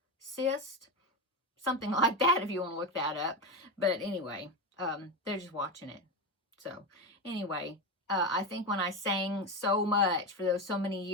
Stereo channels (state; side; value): normal; both; correlation 0.16